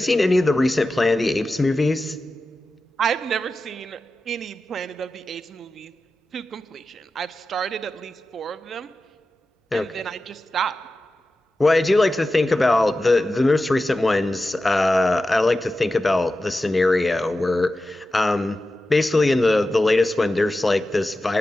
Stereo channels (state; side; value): normal; both; correlation 0.93